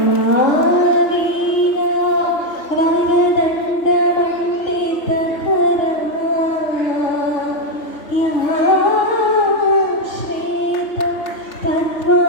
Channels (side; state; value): right; late; 3.2 ms